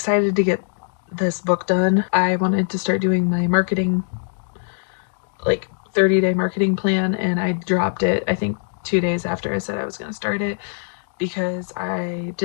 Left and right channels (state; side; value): silent; right; digital silence